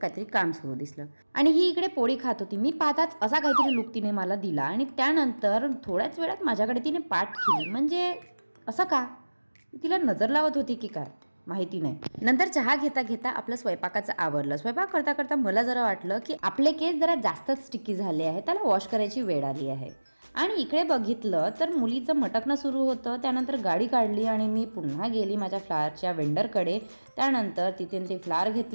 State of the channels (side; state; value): both; inverted; correlation -1.00